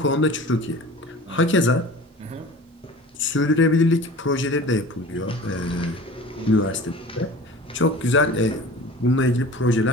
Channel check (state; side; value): normal; both; correlation 0.40